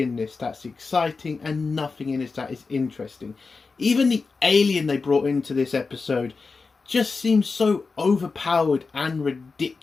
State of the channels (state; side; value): quieter; right; 4.4 dB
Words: this that's exciting and nothing in this that is interesting. Even the alien they brought into this episode just seems so overpowered and